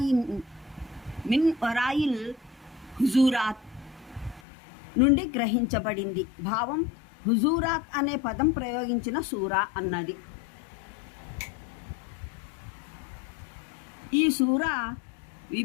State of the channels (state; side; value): drops out; right; at 4.4 s